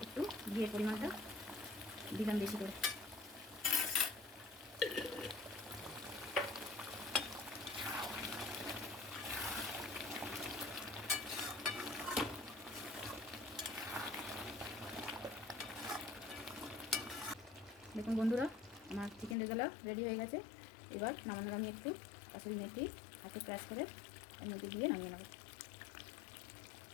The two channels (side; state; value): right; drops out; at 19.4 s